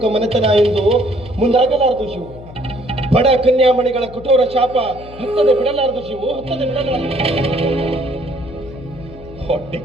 ಮನೆತನ ಎಂದು ಮುಂದಾಗಲಾರದು ಶಿವು. ಬಡ ಕನ್ಯಾಮಣಿಗಳ ಕಠೋರ ಶಾಪ ಹತ್ತದೆ ಬಿಡಲಾರದು ಶಿವು, ಹತ್ತದೆ ಬಿಡಲಾರದು. ಹೊಟ್ಟೆ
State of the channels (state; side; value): noise; left; hum, 17 dB below the sound